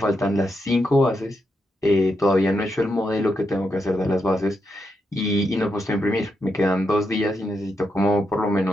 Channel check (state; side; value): normal; both; correlation 0.83